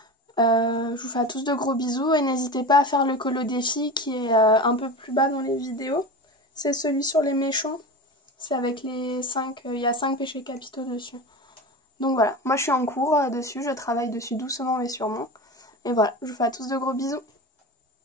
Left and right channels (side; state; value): both; normal; correlation 0.28